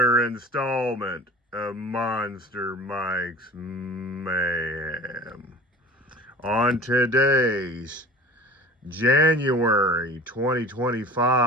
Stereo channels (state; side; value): normal; both; correlation 0.40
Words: installment of Monster Mike's Mayhem. On today's January